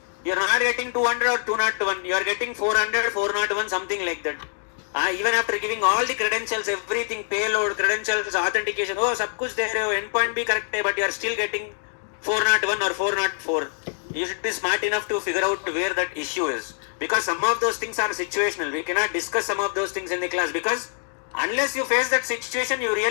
you are not getting 200 or 201, you are getting 400, 401, something like that. Even after giving all the credentials, everything, payload, credentials, authentication, sab kuch de rahe ho, endpoint bhi correct hai, but you are still getting 401 or 404. You should be smart enough to figure out where that issue is. Because some of those things are situational. We cannot discuss some of those things in the class, because unless you face that situation, you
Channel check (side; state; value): right; silent; digital silence